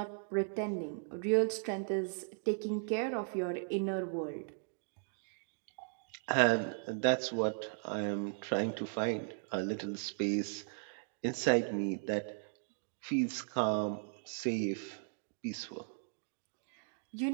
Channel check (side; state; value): left; silent; digital silence